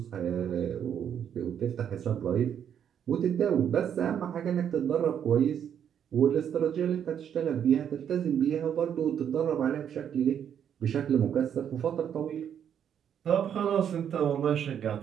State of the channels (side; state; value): left; quieter; 8.8 dB